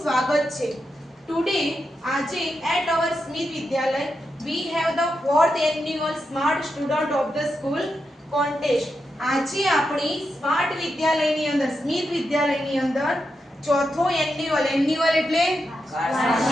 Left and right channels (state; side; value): normal; both; correlation 0.86